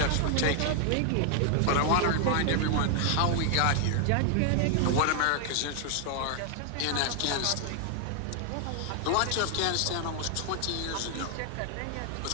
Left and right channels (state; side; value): different; both; correlation 0.00